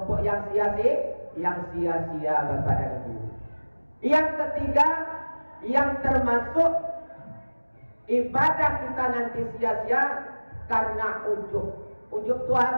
yang sia-sia Bapak dan Ibu. Yang ketiga, yang termasuk ibadah kita nanti sia-sia karena ujub. Ujub itu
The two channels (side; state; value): both; inverted; correlation -1.00